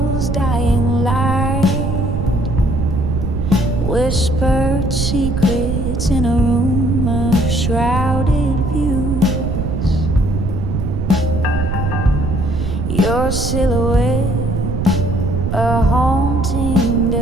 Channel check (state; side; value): noise; right; rumble, 1 dB below the sound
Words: dying light, whispered secrets in a room of shrouded views. Your silhouette, a haunting